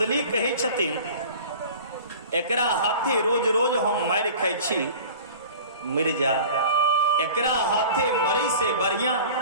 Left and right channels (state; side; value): inverted; both; correlation -0.40